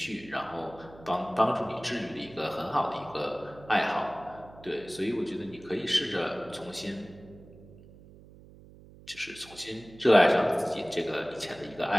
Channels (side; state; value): right; noise; hum, 21 dB below the sound